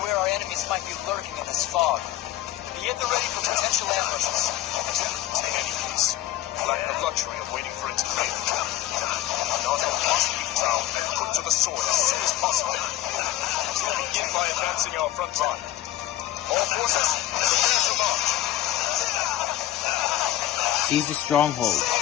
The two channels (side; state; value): right; quieter; 13.9 dB